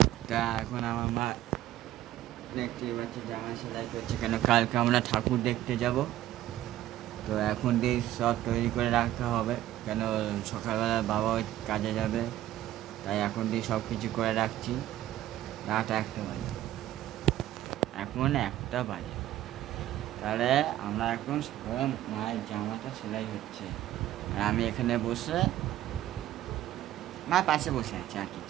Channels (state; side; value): quieter; left; 13.8 dB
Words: তা এখন আমার মা দেখতে পাচ্ছি জামা সেলাই করছে, কেন কালকে আমরা ঠাকুর দেখতে যাব। তো এখন দিয়ে সব তৈরি করে রাখতে হবে, কেন সকালবেলা বাবা ওই কাজে যাবে। তাই এখন দিয়ে সব কিছু করে রাখছি। রাত 1টা বাজে, এখন 1টা বাজে। তাহলে আমরা এখন সকালে মায়ের জামাটা সেলাই হচ্ছে, আর আমি এখানে বসে মা পাশে বসে আছে, আর